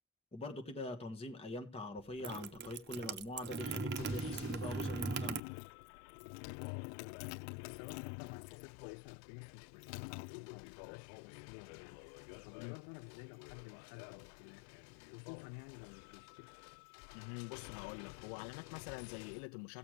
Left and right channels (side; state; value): right; drops out; at 5.4 s